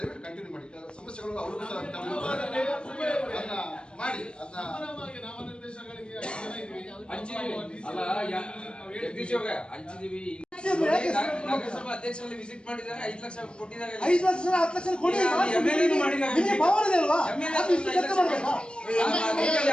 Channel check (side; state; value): right; late; 0.054 ms